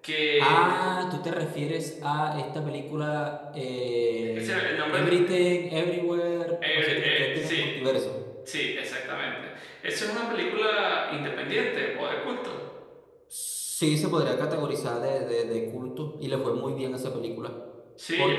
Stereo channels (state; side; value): identical; both; correlation 1.00